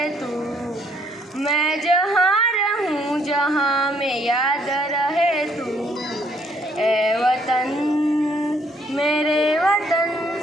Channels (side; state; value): both; normal; correlation 0.67